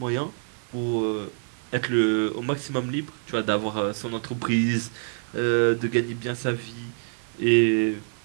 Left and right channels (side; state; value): left; silent; 61 dB below the other